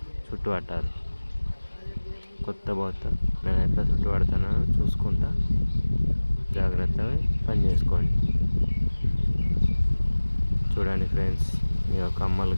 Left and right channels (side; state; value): both; inverted; correlation -1.00